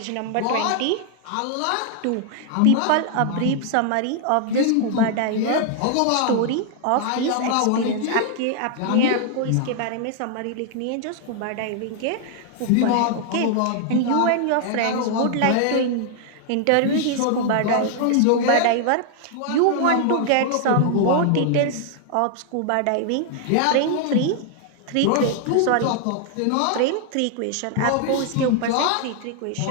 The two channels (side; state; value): both; different; correlation 0.00